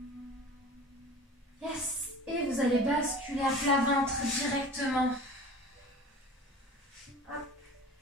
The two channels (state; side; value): normal; both; correlation 0.40